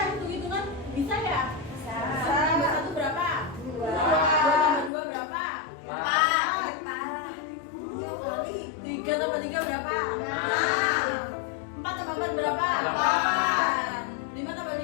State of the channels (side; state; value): right; drops out; at 4.9 s